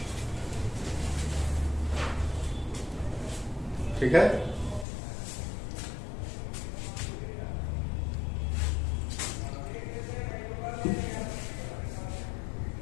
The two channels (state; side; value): drops out; right; at 4.9 s